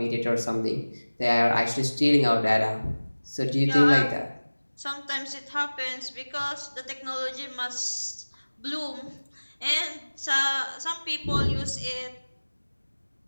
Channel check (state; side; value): inverted; both; correlation -1.00